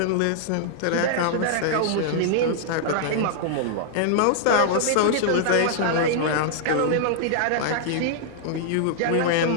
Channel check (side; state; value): both; different; correlation -0.01